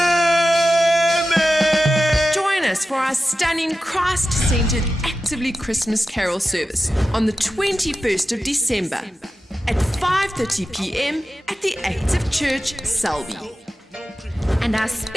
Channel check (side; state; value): both; normal; correlation 0.93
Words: Join us for our stunning Christ-centered Actively Christmas Carol service on the 21st of December at 5:30 p.m. at the Active Church, Selby. And our